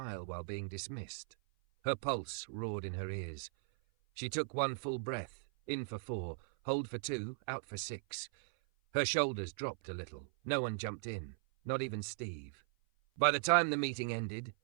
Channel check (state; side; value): silent; left; 52 dB below the other